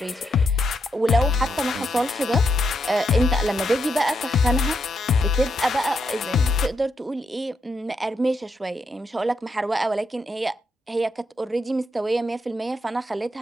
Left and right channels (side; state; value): both; normal; correlation 0.81